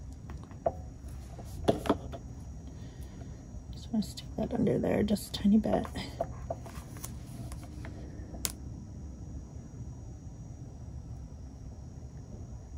Just want to stick that under there just a tiny bit.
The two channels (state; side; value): identical; both; correlation 1.00